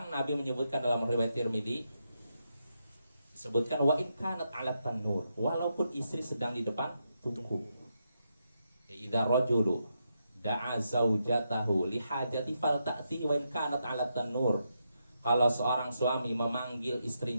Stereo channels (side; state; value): both; inverted; correlation -0.83